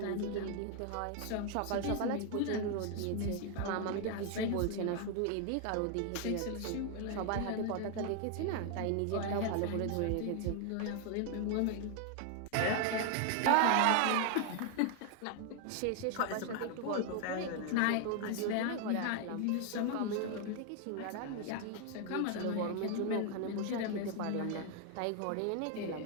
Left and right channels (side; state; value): both; different; correlation 0.01